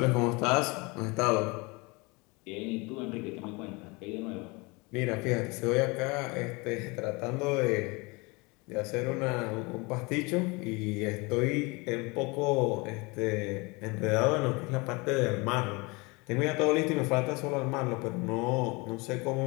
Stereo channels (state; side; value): quieter; right; 26.8 dB